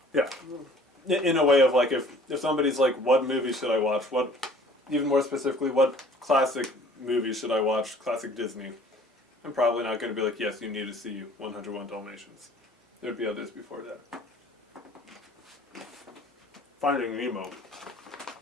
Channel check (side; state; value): both; normal; correlation 0.52